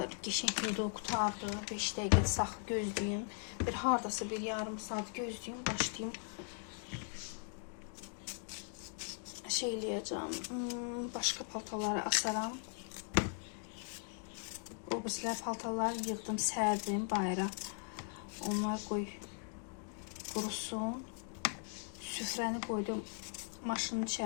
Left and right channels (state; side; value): silent; right; 52 dB below the other